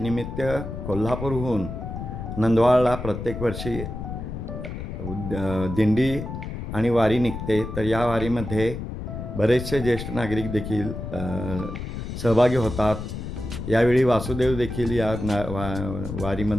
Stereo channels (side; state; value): left; noise; rumble, 7 dB below the sound